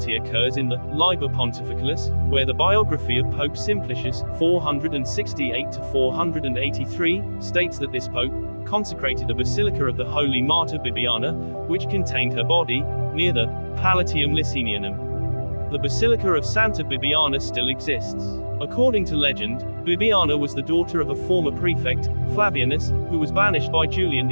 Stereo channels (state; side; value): inverted; both; correlation -1.00